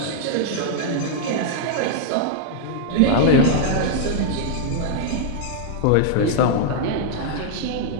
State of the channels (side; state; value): both; different; correlation -0.01